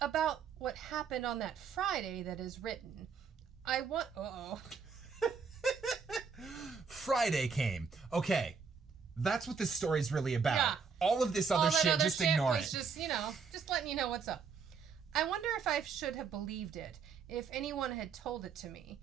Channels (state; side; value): quieter; left; 5.7 dB